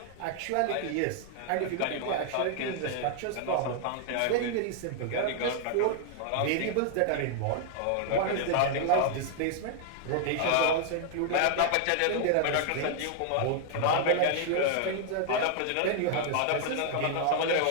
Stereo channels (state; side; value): different; both; correlation -0.01